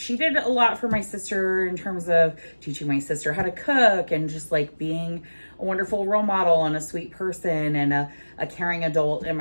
did a lot for my sister in terms of teaching my sister how to cook and just like being a wonderful role model and a sweet person and a caring adult in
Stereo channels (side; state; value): both; inverted; correlation -1.00